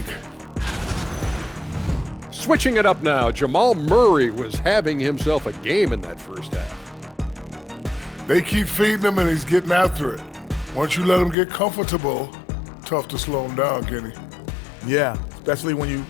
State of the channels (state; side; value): drops out; right; at 11.4 s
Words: Switching it up now, Jamal Murray was having himself a game in that first half. They keep feeding him, and he's getting after it. Once you let him get comfortable, tough to slow him down, Kenny. Yeah, especially when you